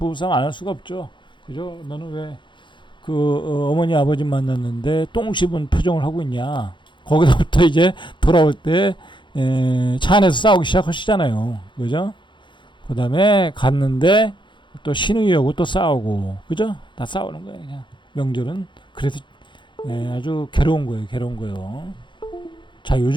안 할 수가 없죠. 그죠? 너는 왜 어머니 아버지 만났는데 똥 씹은 표정을 하고 있냐? 거기서부터 이제 돌아올 때 차 안에서 싸우기 시작하시잖아요. 그죠? 그 다음에 갔는데 또 신우이 오고 또 싸우고, 그죠? 다 싸우는 거예요. 그냥 명절은 그래서 아주 괴로운 거예요. 자,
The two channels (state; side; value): late; right; 0.23 ms